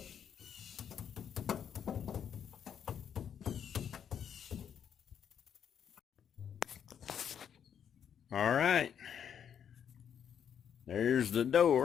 All right, there's the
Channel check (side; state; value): right; quieter; 8.4 dB